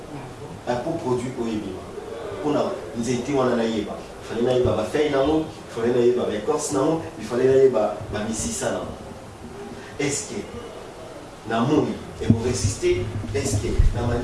pour produire au Yébi. Nous étions en Anaïba. Il fallait que faire il fallait que l'écorce, il fallait que Mississa. Est-ce que Namoui et vous résistez? Est-ce que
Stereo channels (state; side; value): identical; both; correlation 1.00